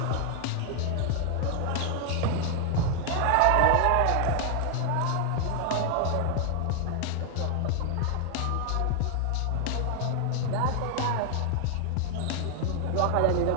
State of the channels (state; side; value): different; both; correlation 0.00